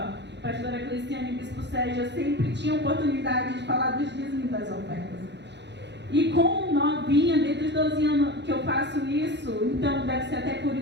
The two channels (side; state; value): left; late; 0.51 ms